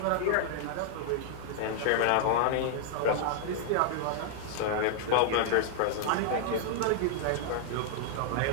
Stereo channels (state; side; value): different; both; correlation -0.01